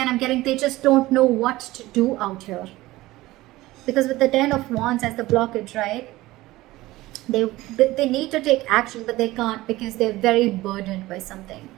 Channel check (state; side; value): quieter; left; 18.0 dB